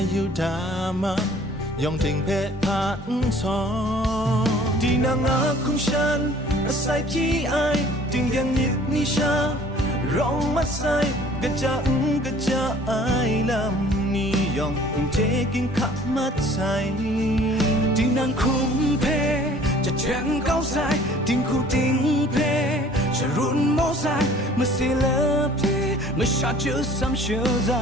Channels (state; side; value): normal; both; correlation 0.52